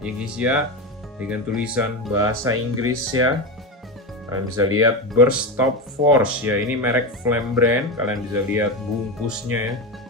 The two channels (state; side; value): normal; both; correlation 0.17